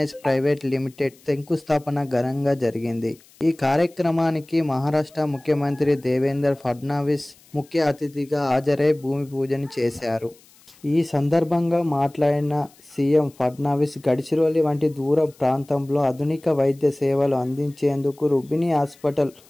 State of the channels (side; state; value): left; noise; hiss, 28 dB below the sound